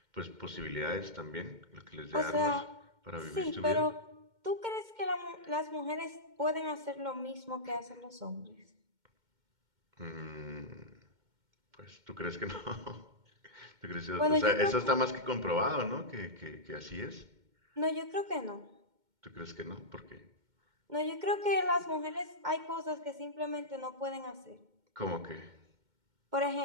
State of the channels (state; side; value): late; left; 2.1 ms